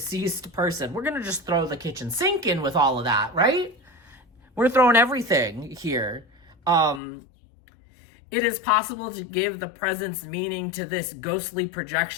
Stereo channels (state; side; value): drops out; right; at 7.0 s